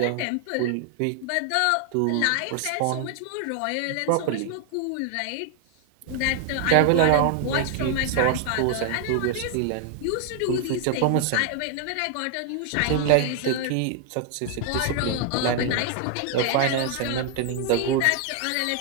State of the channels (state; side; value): different; both; correlation 0.00